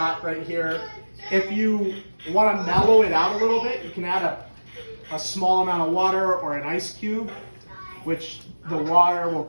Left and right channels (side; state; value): both; inverted; correlation -1.00